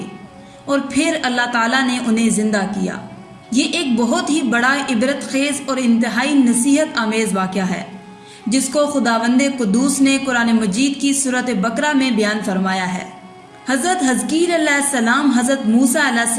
और फिर अल्लाह ताला ने उन्हें ज़िंदा किया। ये एक बहुत ही बड़ा इबरत खेज़ और इंतहाई नसीहत आमेज़ वाक़या है, जिसको खुदावंदे कुद्दूस ने कुरान मजीद की सूरत बकरा में बयान फरमाया है। हज़रत हज़कील अलैहिस्सलाम हज़रत मूसा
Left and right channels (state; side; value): identical; both; correlation 1.00